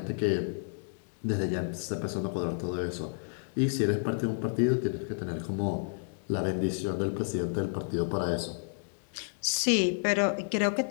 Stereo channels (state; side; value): silent; right; digital silence